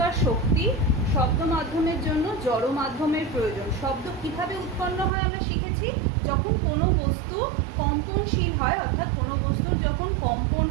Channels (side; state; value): left; drops out; at 5.1 s